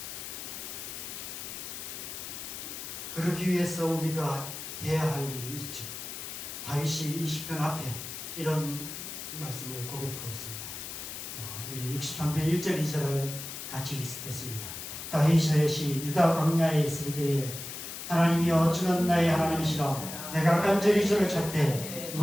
그러기 위해서 우리가 해야 할 일이 있죠. 다윗이 이 시편 앞에 이런 말씀을 고백하고 있습니다. 우리 63편 1절 2절을 같이 있겠습니다. 다윗이 유다 광야에 있을 때에 하나님이여 주는 나의 하나님이시라 내가 간절히 주를 찾되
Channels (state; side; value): noise; left; hiss, 8 dB below the sound